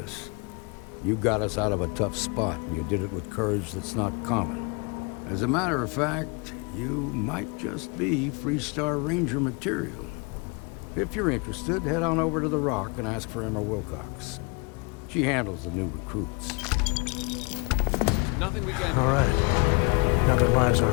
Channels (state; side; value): quieter; right; 31.1 dB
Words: You got us out of a tough spot, and you did it with courage that's not common. As a matter of fact, you might just be Freestar Ranger material. If you're interested, head on over to the Rock and ask for Emma Wilcox. She handles the new recruits. Nothing we can do. All right. Now that lives